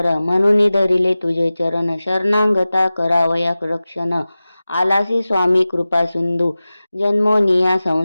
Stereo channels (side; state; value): both; inverted; correlation -0.96